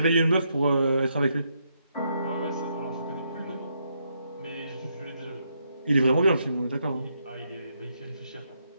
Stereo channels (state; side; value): inverted; both; correlation -0.78